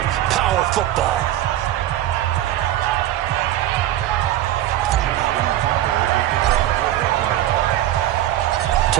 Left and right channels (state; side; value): quieter; left; 13.5 dB